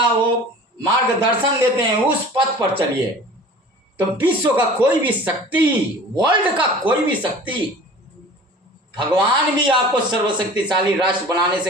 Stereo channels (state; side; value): normal; both; correlation 0.43